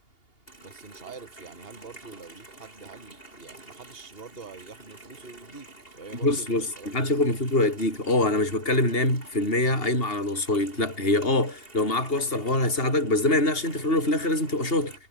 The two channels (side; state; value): right; late; 2.8 ms